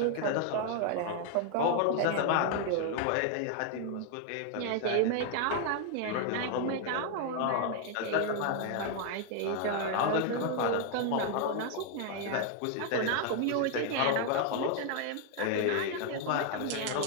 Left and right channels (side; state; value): both; different; correlation 0.00